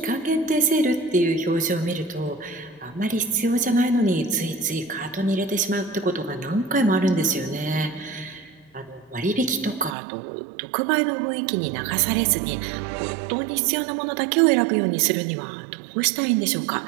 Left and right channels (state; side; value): drops out; left; at 10.0 s